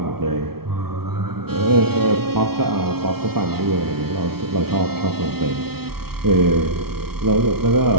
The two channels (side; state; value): left; late; 0.95 ms